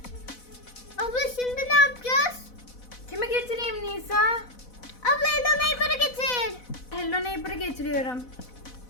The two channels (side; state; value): right; late; 4.0 ms